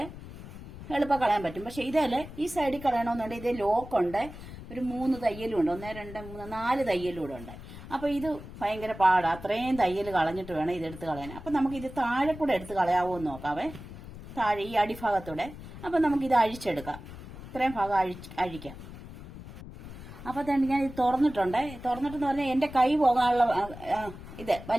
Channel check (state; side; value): noise; left; rumble, 14 dB below the sound